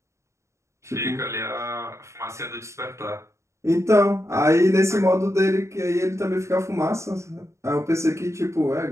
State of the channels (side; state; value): left; late; 0.14 ms